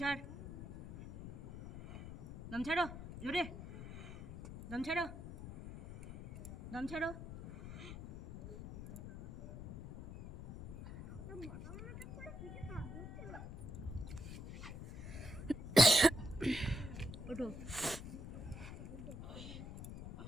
ছাড়, দম ছাড়ো, জোরে দম ছাড়ো, দম ছাড়ো। ওঠো,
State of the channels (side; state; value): left; noise; rumble, 10 dB below the sound